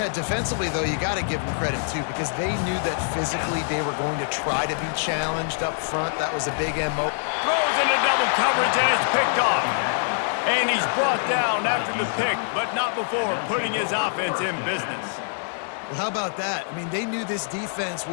defensively, though, you got to give them credit, too, because they knew that physically they were going to try to be challenged up front. That was a big MO. Throws into double coverage, and it's picked off. And he's brought down after the pick, but not before putting his offense in business. Well, how about that? I mean, they knew this defense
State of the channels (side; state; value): right; silent; digital silence